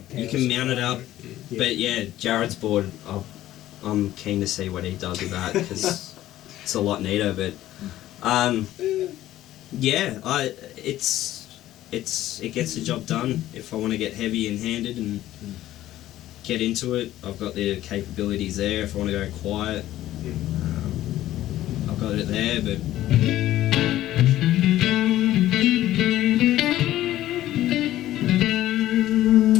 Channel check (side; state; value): right; quieter; 14.1 dB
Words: you can mount it up. But yeah, Jared's board. I'm keen to see what he does with that because it's a lot neater. But it gets the job done. If I want to get heavy and handed and get into it, I've got the capabilities there. If I want to go quiet, I've got it there. But